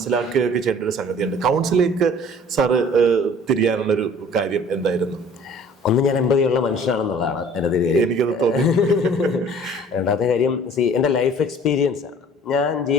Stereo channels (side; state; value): both; normal; correlation 0.50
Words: ചെയ്യേണ്ട ഒരു സംഗതിയുണ്ട്. കൗൺസിലിംഗ് സാറ് തിരിയാനുള്ളൊരു കാര്യം എന്തായിരുന്നു? ഒന്ന്, ഞാൻ എമ്പതിയുള്ള മനുഷ്യനാണെന്നുള്ളതാണ് എൻ്റെ കാര്യം, എനിക്കത് തോന്നി. രണ്ടാമത്തെ കാര്യം, എൻ്റെ ലൈഫ് എക്സ്പീരിയൻസ് ആണ്. ഞാൻ